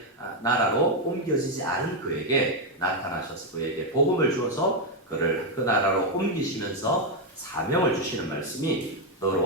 나라로 옮겨지지 않은 그에게 나타나셔서 그에게 복음을 주어서 그를 그 나라로 옮기시면서 사명을 주시는 말씀이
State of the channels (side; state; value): both; normal; correlation 0.03